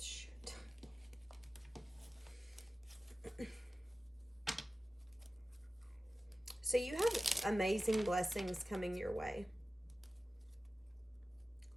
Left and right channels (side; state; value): both; normal; correlation 0.96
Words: So you have amazing blessings coming your way.